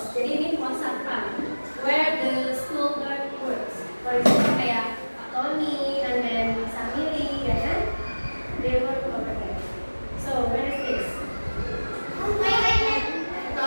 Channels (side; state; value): both; inverted; correlation -1.00